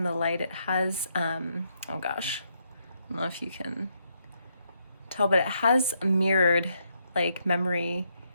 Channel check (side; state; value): both; inverted; correlation -0.77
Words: the light, it has, oh gosh, I don't know if you can tell, but it has mirrored like memory